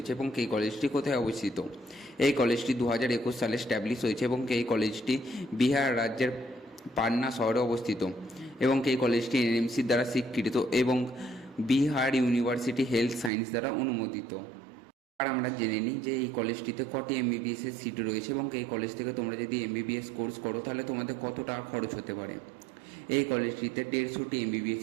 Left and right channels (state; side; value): drops out; left; at 13.3 s